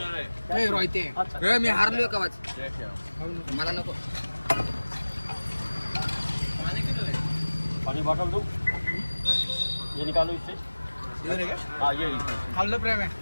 रोहिते. मी हारलोय का मला नको. पाणी बॉटल दो ये निकालो इससे. इधर है क्या? हाँ ये खाल्लं प्रेम आहे.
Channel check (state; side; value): inverted; both; correlation -1.00